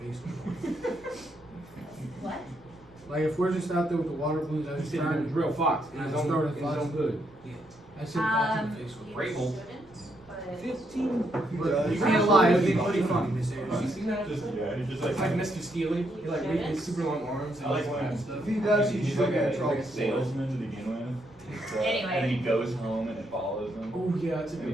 face? What? Like if we're just out there with the water balloons, I just turned and drew a fox and I just throw it in his own good. Yeah. I said fox in the face. Rabel. 15. You can't lie, it'd be pretty funny, Miss Have you Ayers. seen that? Just, yeah, he just It's like Mr. Steely. He like has super long arms and I like all when- that stuff. If he does, he's like a salesman to begin with. Anyway. And then he goes home and it follows him. Oh yeah, that's a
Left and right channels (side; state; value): right; noise; rumble, 26 dB below the sound